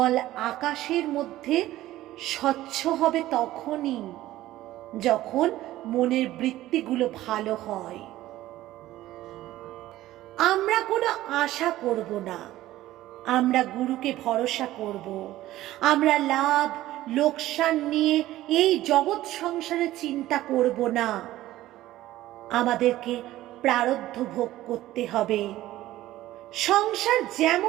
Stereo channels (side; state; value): left; quieter; 15.2 dB